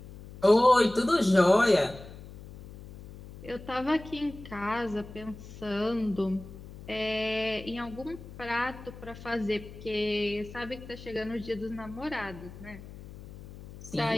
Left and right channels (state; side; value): noise; left; hum, 15 dB below the sound